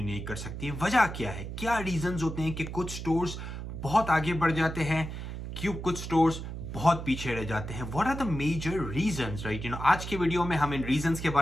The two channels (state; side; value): noise; right; hum, 7 dB below the sound